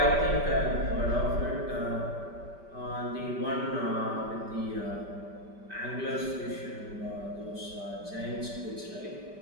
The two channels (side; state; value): left; late; 5.1 ms